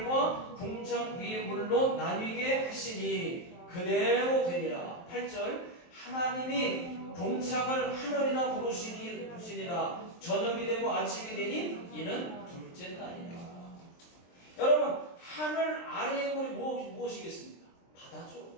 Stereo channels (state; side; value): late; right; 23 ms